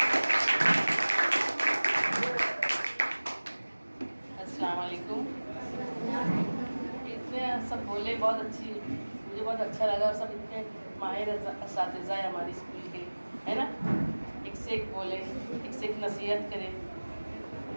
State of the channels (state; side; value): inverted; both; correlation -1.00